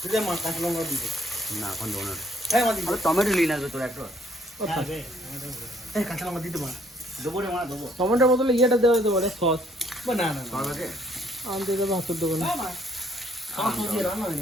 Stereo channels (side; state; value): both; normal; correlation 0.65